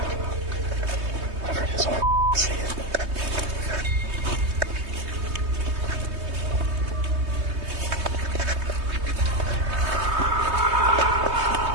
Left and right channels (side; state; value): left; late; 3.2 ms